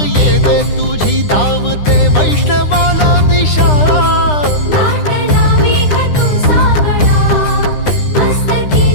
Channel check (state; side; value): late; right; 9.9 ms